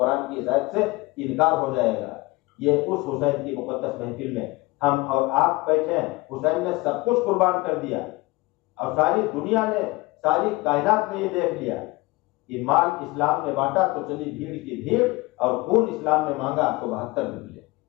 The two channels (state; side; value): quieter; right; 22.5 dB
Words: کی اس آیت سے انکار ہو جائے گا۔ یہ اس حسین کی مقدس محفل میں ہم اور آپ بیٹھے ہیں۔ حسین نے سب کچھ قربان کر دیا اور ساری دنیا نے، ساری کائنات نے یہ دیکھ لیا کہ مال اسلام نے بانٹا تو چلی بھیڑ کی بھیڑ، اور خون اسلام نے مانگا تو 72 نکلے۔